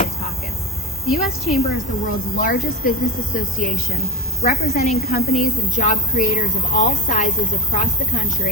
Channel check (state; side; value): normal; both; correlation 0.30